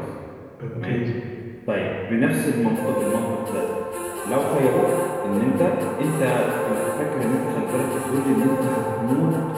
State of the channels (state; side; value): identical; both; correlation 1.00